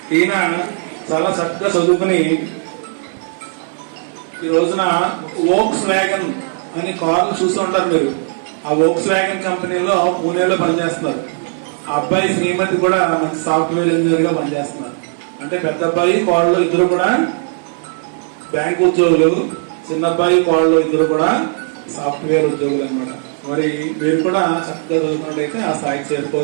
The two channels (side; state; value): left; silent; 56 dB below the other